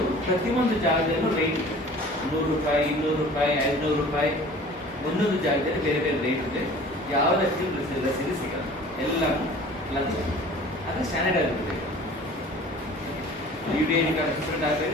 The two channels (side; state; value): both; normal; correlation 0.45